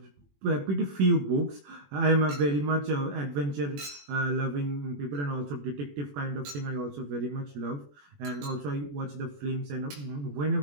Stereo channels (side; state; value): left; late; 21 ms